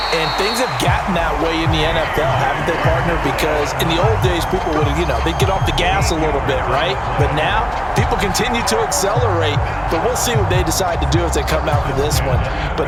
And things have gotten that way in the NFL, haven't they, partner? Because in the old days, people would, they'd get off the gas a little bit, right? But now, people continue to accelerate. But we'll see what they decide to do as they come out for this one. But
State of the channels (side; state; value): both; identical; correlation 1.00